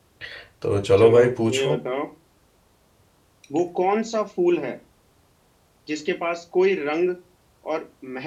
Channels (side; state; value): both; identical; correlation 1.00